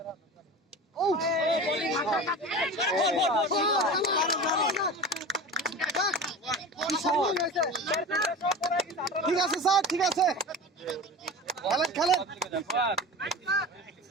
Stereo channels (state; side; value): normal; both; correlation 0.32